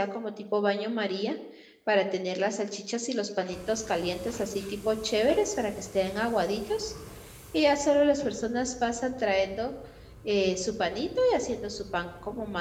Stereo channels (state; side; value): identical; both; correlation 1.00